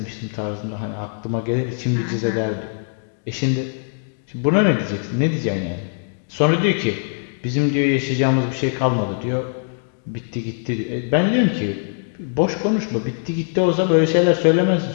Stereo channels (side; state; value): right; silent; digital silence